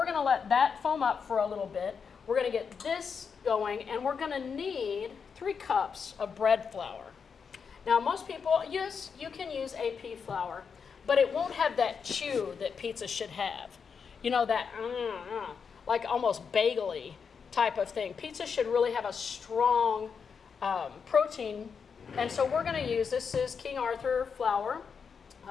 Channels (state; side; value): quieter; right; 6.1 dB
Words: going to let that foam up for a little bit. We're going to get this going, and we're going to need 3 cups of bread flour. Now, most people, yes, you can use AP flour, but it won't have that chew that pizza should have. You know, that like almost bagel-y type of thing. Pizza should really have a strong protein, and so we're going to use, this is King Arthur flour,